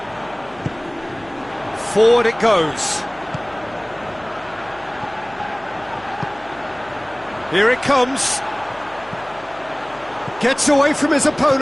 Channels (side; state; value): left; noise; hum, 25 dB below the sound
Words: Forward it goes. Here it comes. Gets away from his